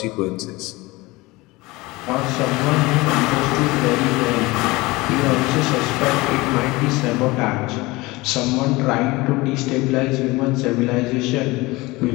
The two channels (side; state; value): right; quieter; 21.8 dB